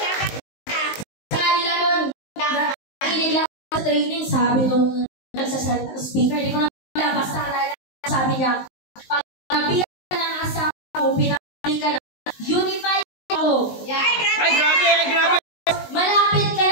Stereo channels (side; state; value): right; late; 19 ms